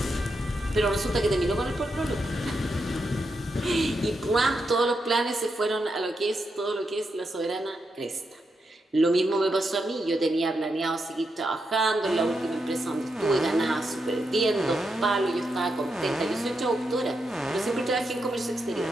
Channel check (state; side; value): normal; both; correlation 0.84